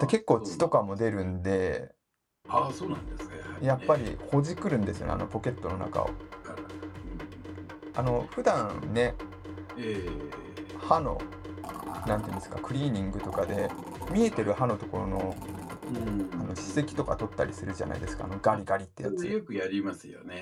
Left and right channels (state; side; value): identical; both; correlation 1.00